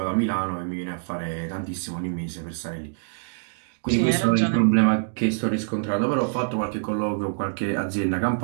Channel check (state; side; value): silent; left; digital silence